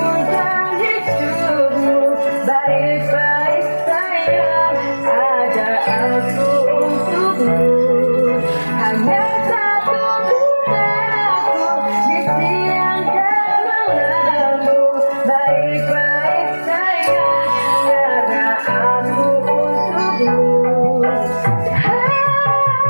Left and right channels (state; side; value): inverted; both; correlation -1.00